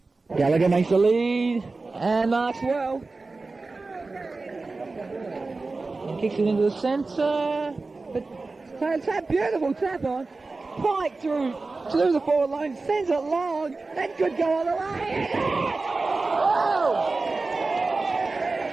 Gallagher makes the lead. And marks well. And kicks it into the centre. But tap, beautiful tap on. Pike through the forward line, sends it long, that could go all the way. Oh!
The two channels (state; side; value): quieter; left; 3.6 dB